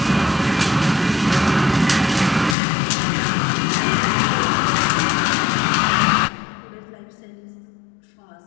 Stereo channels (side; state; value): right; drops out; at 2.6 s